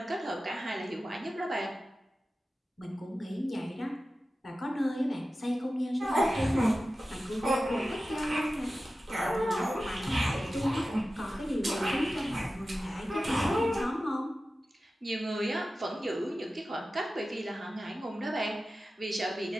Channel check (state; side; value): normal; both; correlation 0.94